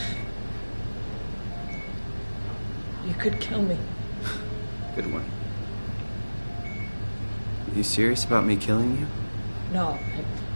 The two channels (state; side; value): inverted; both; correlation -1.00